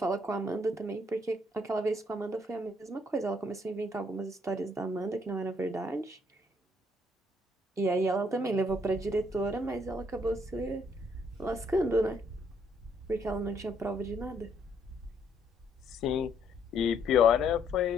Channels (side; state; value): both; normal; correlation 0.69